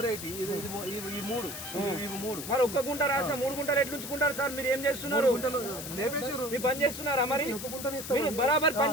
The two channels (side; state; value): left; noise; hiss, 8 dB below the sound